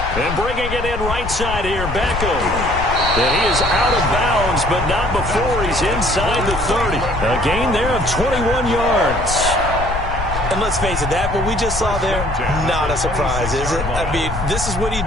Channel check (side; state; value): left; noise; rumble, 6 dB below the sound